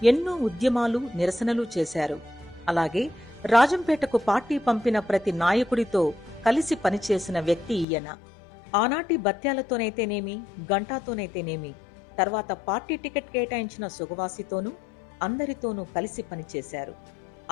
ఎన్నో ఉద్యమాలు, నిరసనలు చేశారు. అలాగే రాజంపేటకు పార్టీ పంపిన ప్రతి నాయకుడితో కలిసి పనిచేసిన వ్యక్తి ఈయన. ఆనాటి బత్యాలతోనైతేనేమి, గంటాతోనైతేనేమి, తర్వాత పార్టీ టికెట్ కేటాయించిన సుగవాసితోనూ అందరితోనూ కలిసి పనిచేశారు.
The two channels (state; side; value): drops out; right; at 7.9 s